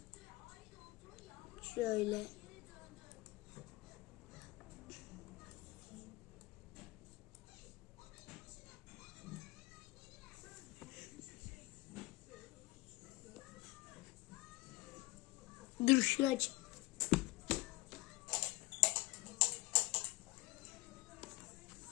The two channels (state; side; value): quieter; right; 21.7 dB